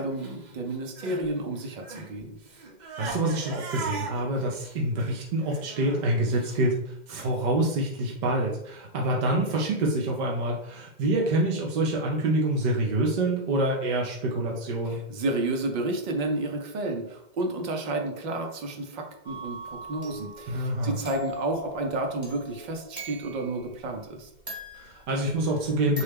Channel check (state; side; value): late; left; 2.1 ms